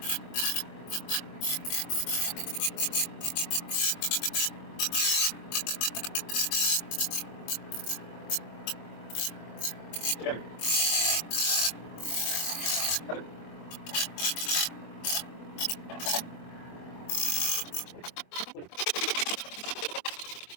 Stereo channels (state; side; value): late; right; 24 ms